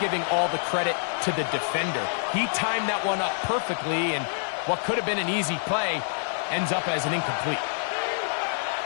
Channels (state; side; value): silent; right; digital silence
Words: all the credit to the defender. He timed that one up perfectly, and what could have been an easy play ends up as an incomplete.